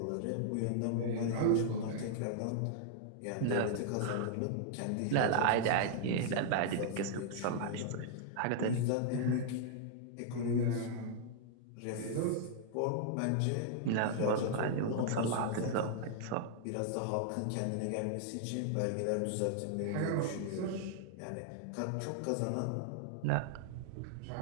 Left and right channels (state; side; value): different; both; correlation -0.01